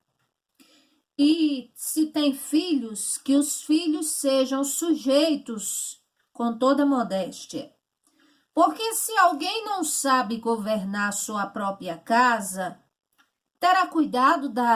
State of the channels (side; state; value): both; identical; correlation 1.00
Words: E se tem filhos, que os filhos sejam sujeitos com toda modéstia. Porque se alguém não sabe governar sua própria casa, terá cuidado